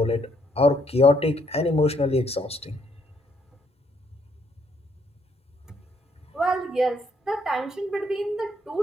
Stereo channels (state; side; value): normal; both; correlation 0.70